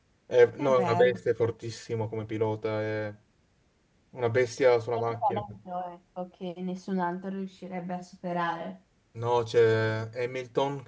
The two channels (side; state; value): both; identical; correlation 1.00